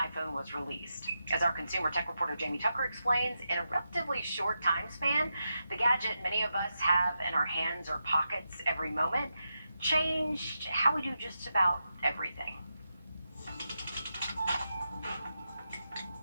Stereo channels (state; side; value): inverted; both; correlation -0.88